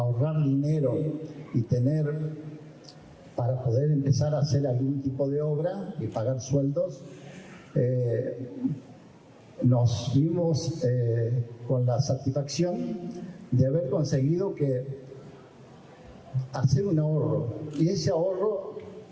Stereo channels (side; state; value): both; identical; correlation 1.00